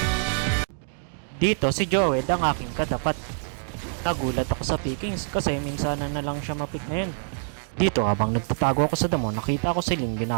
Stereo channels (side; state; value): left; silent; digital silence